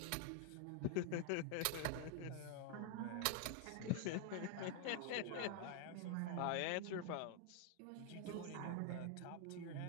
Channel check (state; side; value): different; both; correlation 0.00